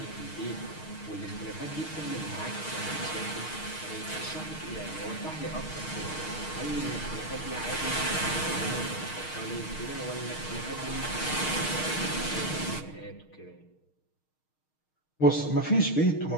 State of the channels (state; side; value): late; right; 6.5 ms